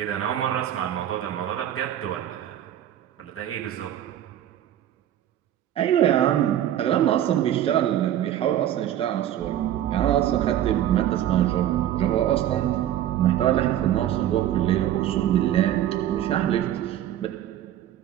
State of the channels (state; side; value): quieter; left; 11.7 dB